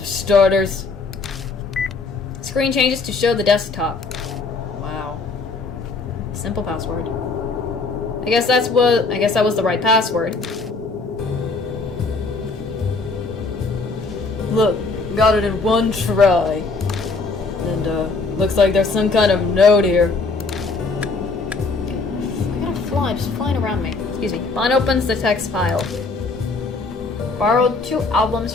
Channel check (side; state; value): right; quieter; 3.9 dB